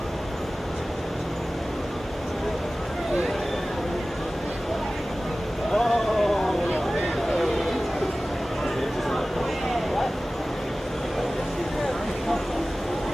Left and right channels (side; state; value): both; normal; correlation 0.97